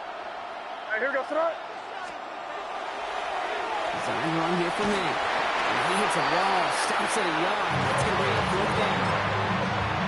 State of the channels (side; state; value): both; identical; correlation 1.00